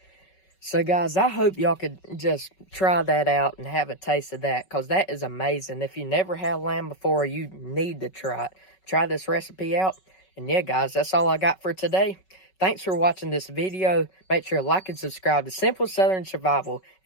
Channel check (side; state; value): right; late; 5.3 ms